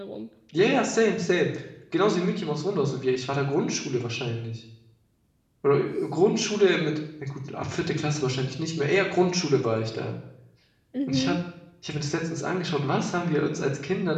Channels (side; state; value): both; identical; correlation 1.00